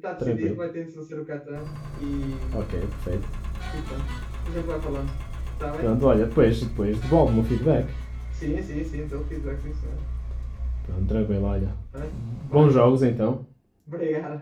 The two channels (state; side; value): identical; both; correlation 1.00